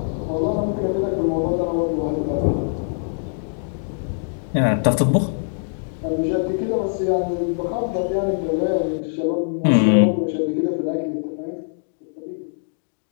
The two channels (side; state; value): right; silent; digital silence